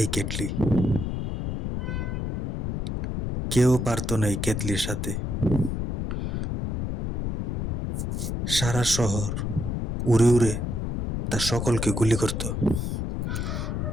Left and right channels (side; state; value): left; noise; rumble, 2 dB below the sound